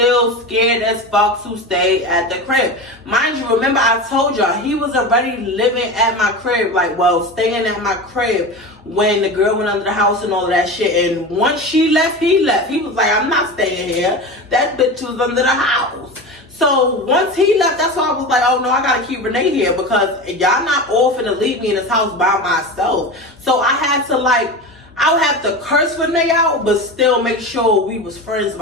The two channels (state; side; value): normal; both; correlation 0.27